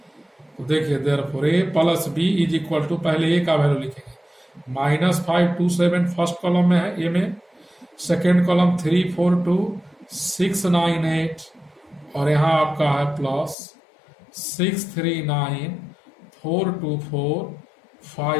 तो देखिए, therefore A plus B is equal to, पहले ए का वैल्यू लिखेंगे, -5 2 7 फर्स्ट कॉलम में है ए में, सेकेंड कॉलम 3 4 2 6 9 8, और यहाँ आपका है प्लस 6 3 9 4 2 4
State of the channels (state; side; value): drops out; right; at 13.6 s